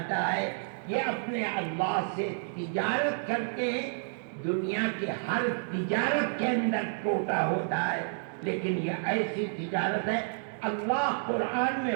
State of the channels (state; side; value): silent; left; digital silence